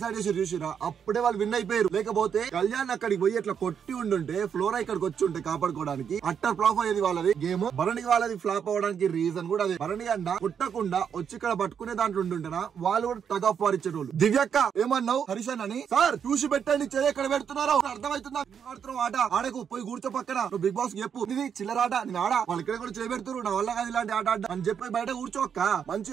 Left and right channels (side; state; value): left; quieter; 7.6 dB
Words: చేసి చూసిరా, అప్పుడే వాళ్ళు విన్ అయిపోయారు. లేకపోతే కళ్యాణ్ అక్కడికి పోయి ఎట్లా కొట్టి ఉండుంటే ఫ్లోరా ఇక్కడికి వచ్చి ఉంటే కాపాడుకోవడానికి అట్టర్ ఫ్లాప్ అయ్యేది వాళ్ళది గేమ్. భరణి వాళ్ళది ఫ్లాప్ అవడానికి రీజన్ కూడా అదే. భరణి అన్న కొట్టకుండా వచ్చి ఇక్కడ పట్టుకునే దాంట్లో ఉంటుంటేనా వాళ్ళు కూడా టగ్ ఆఫ్ వార్ ఇచ్చేటోళ్ళు. దివ్యక్క ఏమన్నావు హరీష్ అని? సార్ చూసి పెట్టండి, చేయి ఎక్కడ పెడుతున్నారో అర్థమవుతుందా? ఆడుతున్నావు ఆట, ఆడకు పోయి కూర్చో పక్కన. నువ్వు బిగ్ బాస్ చెప్పు, ఇది చిల్లరాట, నేను ఆడా, వాళ్ళు ఇక్కడ కూడా చేయబెడుతున్నారు, నా వల్ల కాదు ఇలాంటి ఆట ఆడ అని చెప్పి బయట కూర్చోక్క.